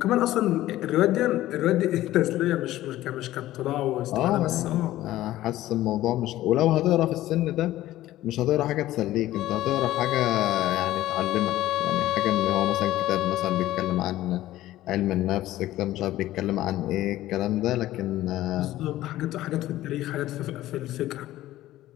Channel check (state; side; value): quieter; right; 15.0 dB